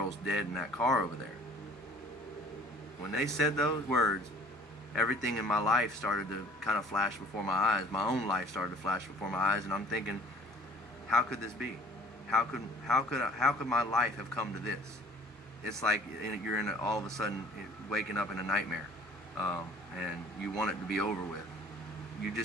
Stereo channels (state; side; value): normal; both; correlation 0.51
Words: dead in that car over there. When they said those words, everything in my life started to kind of flash before my eyes. My own life started to flash before my eyes, and I'm thinking, how could this be? How could my life have come to this? It's like you're all of a sudden waking up in a nightmare, and you want it to be over with. You